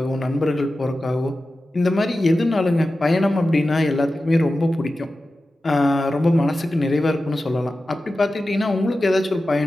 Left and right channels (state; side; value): normal; both; correlation 0.94